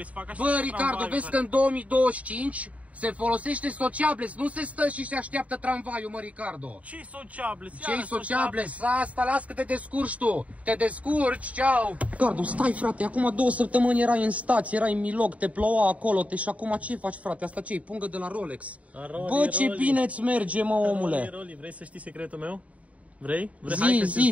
să fac așa? Bă, Ricardo, vezi că în 2025 se folosește sociables, nu se stă și se așteaptă tramvaiul, mă, Ricardo. Ce-i sociables? Ce-i sociables? Asta, las că te descurci tu. Te descurci, ceau. Ricardo, stai, frate, acum 2 săptămâni erai în stație, erai în Milog, te ploua acolo, și acum ce faci, frate? Asta ce-i? Pungă de la Rolex. Bă, ce bine îți merge, mă, omule. Vrei să știi secretul meu? Vrei?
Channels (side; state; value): left; late; 0.068 ms